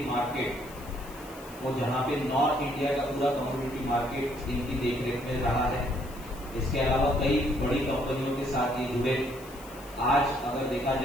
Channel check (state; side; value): noise; left; hiss, 20 dB below the sound